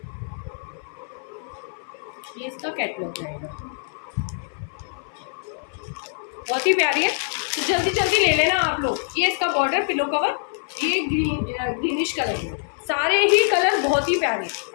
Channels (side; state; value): right; silent; 56 dB below the other